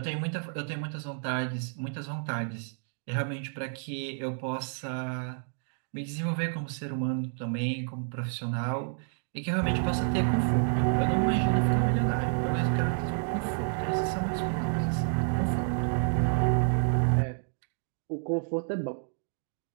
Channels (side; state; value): left; silent; 58 dB below the other